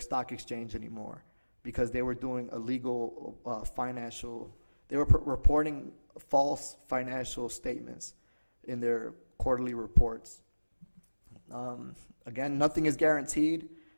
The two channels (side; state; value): both; inverted; correlation -1.00